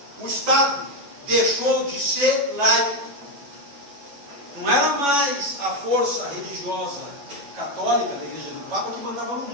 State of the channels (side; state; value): left; late; 11 ms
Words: O Estado deixou de ser laico. Não era mais a força religiosa católica da Igreja do Papa que mandava no